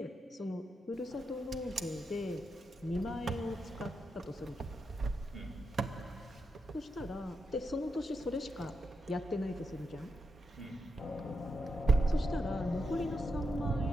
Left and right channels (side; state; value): both; normal; correlation 0.85